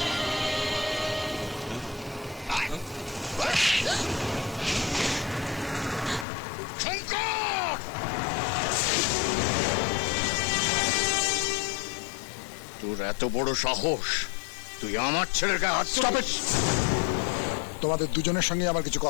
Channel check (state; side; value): drops out; right; at 6.2 s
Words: তোর এত বড় সাহস, তুই আমার ছেলের গায়ে হাত তুলিস? তোমাদের দুজনের সঙ্গে আমার কিছু